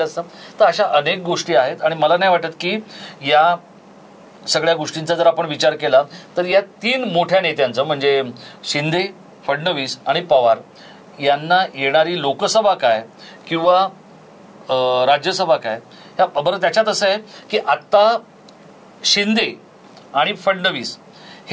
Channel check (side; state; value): both; identical; correlation 1.00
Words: असता? तर अशा अनेक गोष्टी आहेत आणि मला नाही वाटत की या सगळ्या गोष्टींचा जर आपण विचार केला तर या 3 मोठ्या नेत्यांचं म्हणजे शिंदे, फडणवीस आणि पवार यांना येणारी लोकसभा काय किंवा राज्यसभा काय ह्या बरं त्याच्यात असं आहे की आता शिंदे आणि फडणवीस